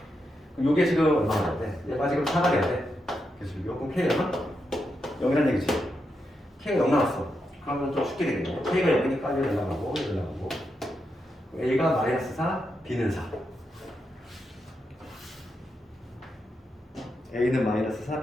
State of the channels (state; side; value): normal; both; correlation 0.85